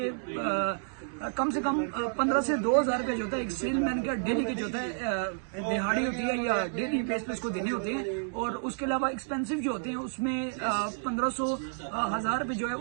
कम से कम 15 से 2,000 रुपये जो होता है एक सेलमैन का डेली के जो होता है, दिहाड़ी होती है या डेली बेस पे उसको देने होते हैं। और उसके अलावा एक्सपेंसिव जो होते हैं उसमें 1500 1000 रुपये जो है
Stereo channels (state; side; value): silent; left; digital silence